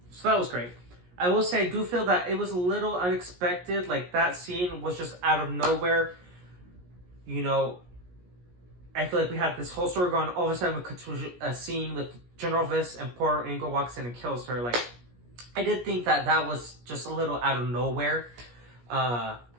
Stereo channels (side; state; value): left; late; 17 ms